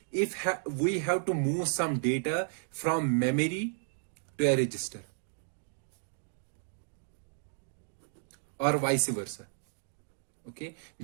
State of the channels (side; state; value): left; silent; digital silence